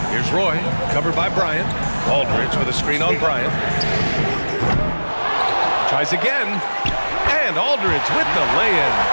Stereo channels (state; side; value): inverted; both; correlation -1.00